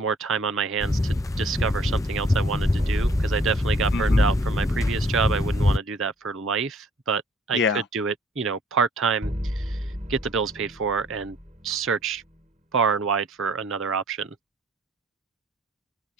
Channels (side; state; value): both; normal; correlation 0.59